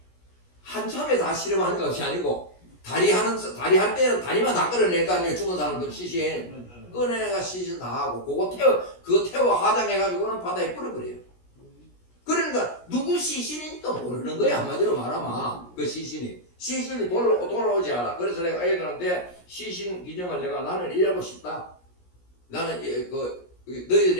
한참에 다 실험하는 것이 아니고 다리 할 때는 다리만 다 끌어낼 거 아니에요. 죽은 사람들 시신 꺼내가 시신 다 하고 그거 태워 화장해가지고는 바다에 뿌려버려요. 그러니까 누구 시신인지도 모르는 거야. 한마디로 말하면 그 시신이 돌아오지 않아. 그래서 내가 애들한테 시신 기증을 나는 일하고 싶다. 나는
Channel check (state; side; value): late; right; 17 ms